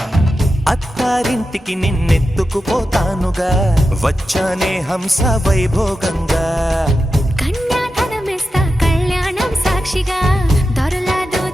అత్తారింటికి నిన్నెత్తుకుపోతానుగా వచ్చానే హంస వైభోగంగా కన్యాధనమిస్తా కళ్యాణం సాక్షిగా దొరలా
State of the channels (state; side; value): normal; both; correlation 0.90